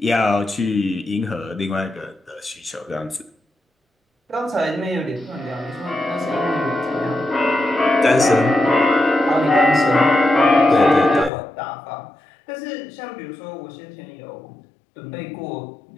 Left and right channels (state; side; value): drops out; right; at 11.3 s